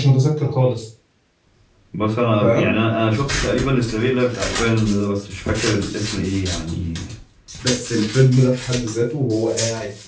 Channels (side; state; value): both; identical; correlation 1.00